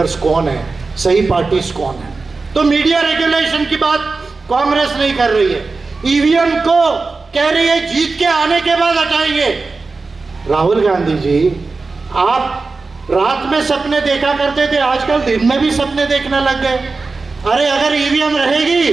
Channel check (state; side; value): quieter; left; 4.0 dB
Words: कौन है, सही पार्टीज कौन है। तो मीडिया रेगुलेशन की बात कांग्रेस नहीं कर रही है, ईवीएम को कह रही है जीत के आने के बाद हटाएंगे। राहुल गांधी जी, आप रात में सपने देखा करते थे, आजकल दिन में भी सपने देखने लग गए। अरे अगर ईवीएम